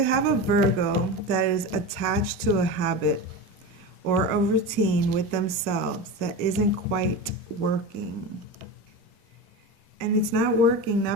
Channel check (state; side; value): normal; both; correlation 0.25